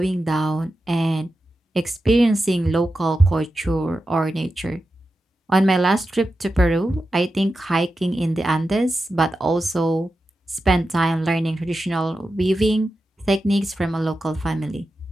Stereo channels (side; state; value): both; normal; correlation 0.91